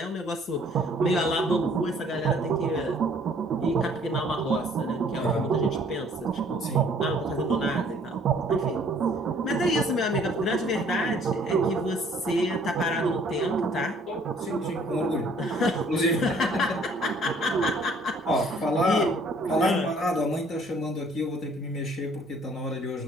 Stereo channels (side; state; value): both; normal; correlation 0.58